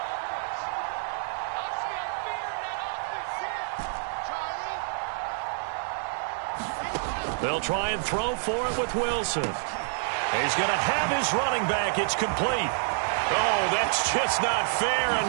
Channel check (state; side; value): silent; left; 59 dB below the other